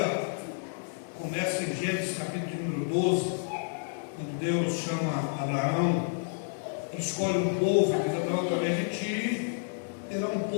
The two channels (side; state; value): right; silent; 58 dB below the other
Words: começa em Gênesis capítulo número 12, quando Deus chama Abraão e escolhe um povo, que diz: Abraão, através de ti terá um